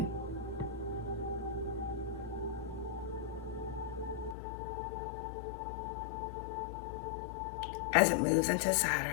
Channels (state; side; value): drops out; right; at 4.4 s